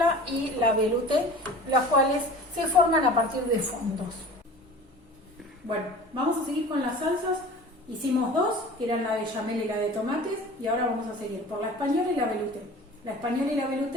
y la velouté, las cuales se forman a partir de fondos. Bueno, vamos a seguir con las salsas. Hicimos dos, que eran la bechamel y la de tomates, y ahora vamos a seguir por la española y la velouté. La española y la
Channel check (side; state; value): both; normal; correlation 0.40